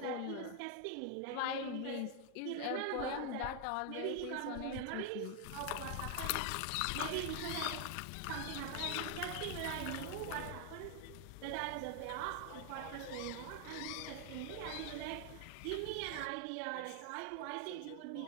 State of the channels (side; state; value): both; different; correlation 0.00